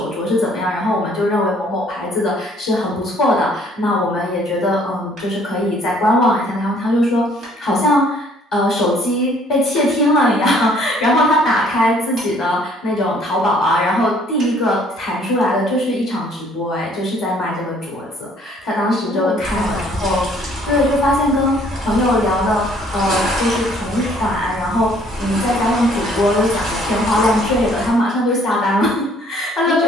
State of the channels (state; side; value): normal; both; correlation 0.60